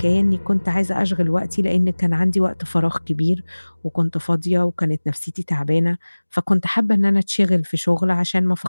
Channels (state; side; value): inverted; both; correlation -1.00